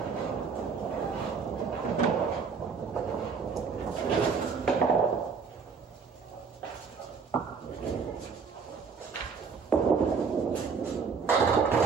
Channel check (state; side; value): quieter; left; 5.6 dB